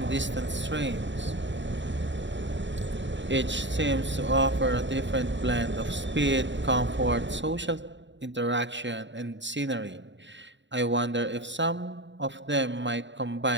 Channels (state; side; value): late; left; 0.53 ms